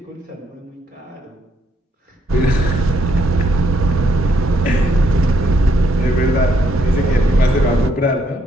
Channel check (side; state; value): both; normal; correlation 0.73